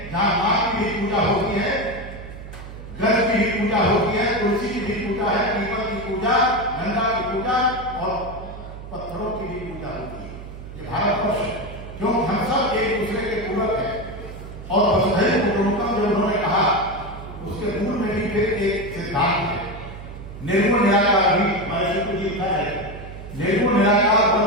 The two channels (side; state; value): right; noise; hum, 13 dB below the sound